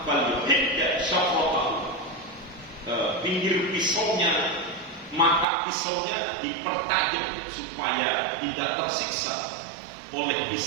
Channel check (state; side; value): drops out; left; at 5.5 s